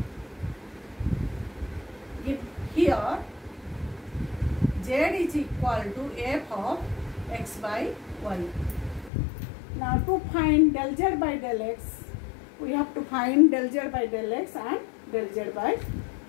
if here z is equal to f of x by y. Now to find del z by del x, we have to find del z by del x and del z by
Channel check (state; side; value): drops out; right; at 9.1 s